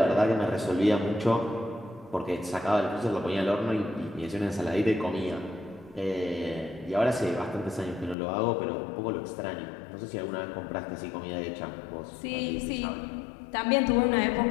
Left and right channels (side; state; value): right; drops out; at 8.2 s